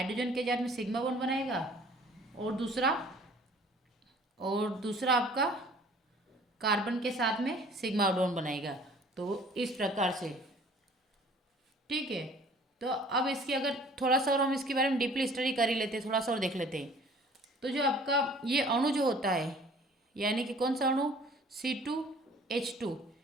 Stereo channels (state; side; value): normal; both; correlation 0.51